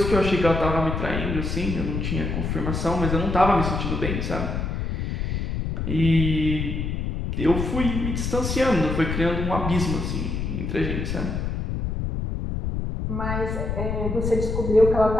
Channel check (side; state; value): left; noise; rumble, 2 dB below the sound